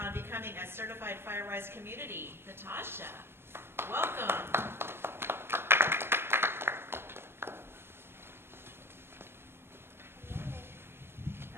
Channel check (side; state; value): left; late; 0.11 ms